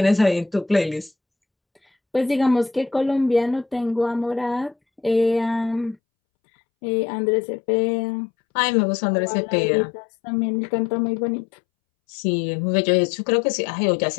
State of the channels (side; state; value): right; drops out; at 6.0 s